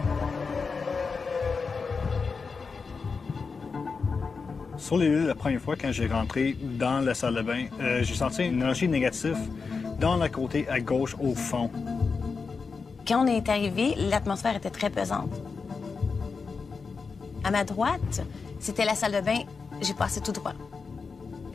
Sur les lieux, la première fois, quand j'ai rentré dans la salle de bain, j'ai senti une énergie négative dans le côté à gauche au fond. Quand on est arrivé, l'atmosphère était très pesante. À ma droite, c'était la salle de bain. J'ai passé tout droit.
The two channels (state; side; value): quieter; right; 4.9 dB